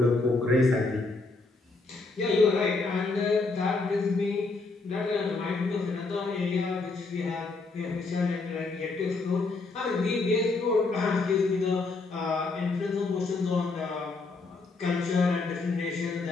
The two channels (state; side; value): quieter; right; 3.7 dB